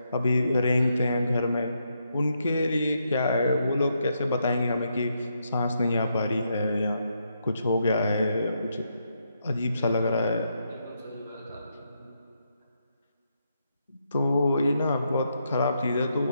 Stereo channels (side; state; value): both; inverted; correlation -0.80